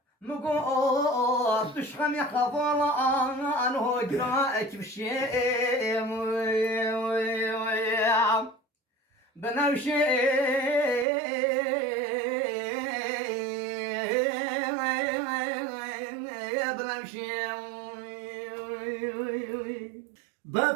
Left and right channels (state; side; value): drops out; left; at 11.1 s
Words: مقوس تشخم يخفر عنه جراءك بشي بنمشي